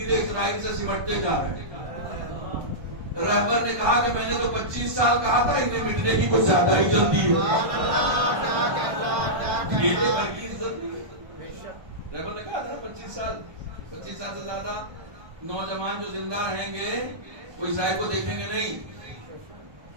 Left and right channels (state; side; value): late; left; 1.5 ms